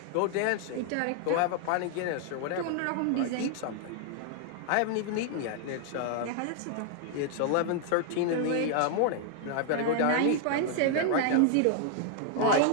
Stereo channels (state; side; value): different; both; correlation 0.00